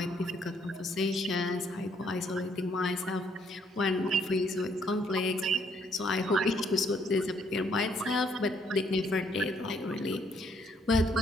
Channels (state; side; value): normal; both; correlation 0.68